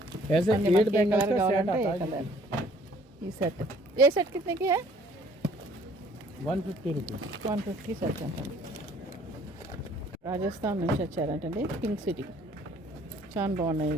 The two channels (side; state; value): both; normal; correlation 0.58